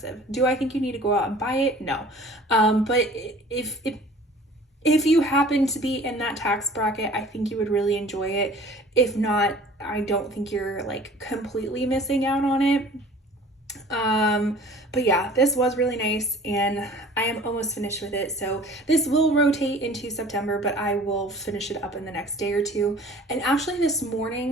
Do I think you need to go out and buy it? No. But if you happen to be in that tax bracket, I think you would really enjoy it. If not, I don't think you're like completely missing out on it. But yeah, this was really nice, and I am almost finished with it. So this will rotate into September, but I will finish it up in the next day or two. And actually this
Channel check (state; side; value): normal; both; correlation 0.47